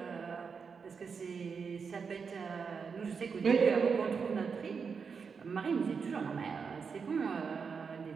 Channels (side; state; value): left; quieter; 5.7 dB